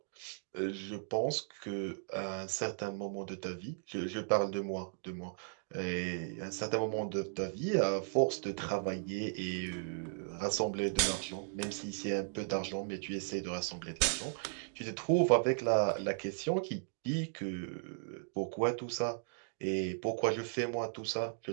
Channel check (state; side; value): silent; left; digital silence